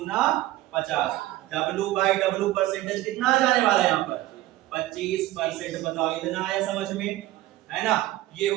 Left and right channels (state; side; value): quieter; left; 16.1 dB